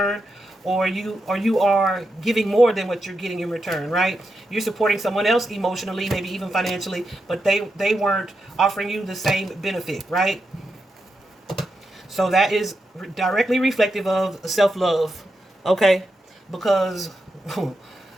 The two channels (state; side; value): normal; both; correlation 0.86